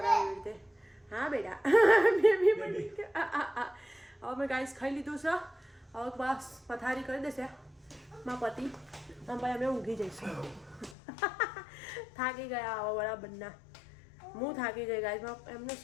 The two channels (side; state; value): right; drops out; at 11.0 s